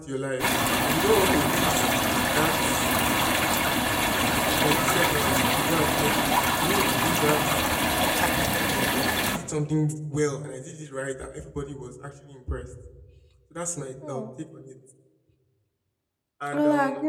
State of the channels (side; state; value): both; identical; correlation 1.00